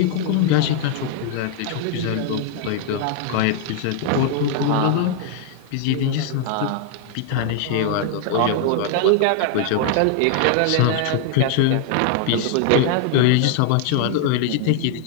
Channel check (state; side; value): different; both; correlation 0.00